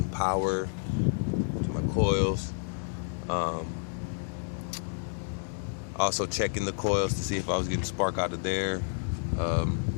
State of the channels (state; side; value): silent; right; digital silence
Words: power to my coils, also checking the coils to see if I was getting spark out of there,